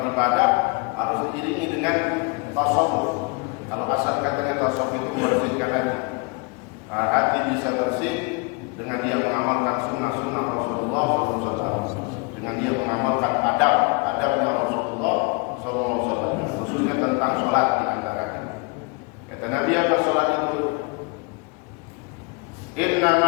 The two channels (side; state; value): right; quieter; 29.7 dB